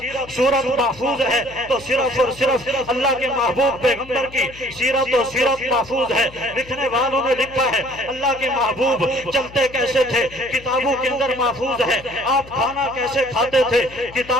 سورت محفوظ ہے تو صرف اور صرف اللہ کے محبوب پیغمبر کی سیرت و سیرت محفوظ ہے۔ لکھنے والوں نے لکھا ہے، اللہ کے محبوب چلتے کیسے تھے کتابوں کے اندر محفوظ ہے، آپ کھانا کیسے کھاتے تھے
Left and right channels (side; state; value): left; noise; hum, 20 dB below the sound